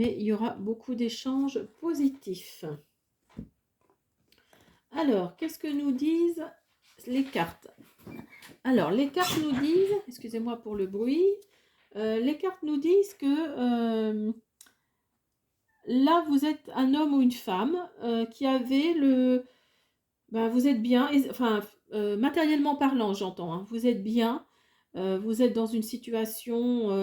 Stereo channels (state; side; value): identical; both; correlation 1.00